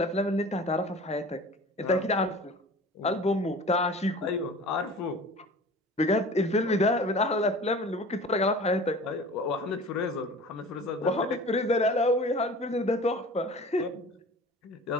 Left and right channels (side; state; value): both; normal; correlation 0.41